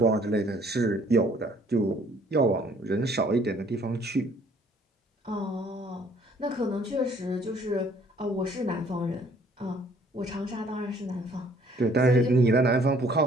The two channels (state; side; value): normal; both; correlation 0.59